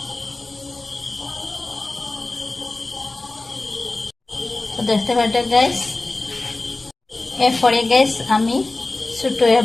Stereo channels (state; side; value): quieter; right; 3.1 dB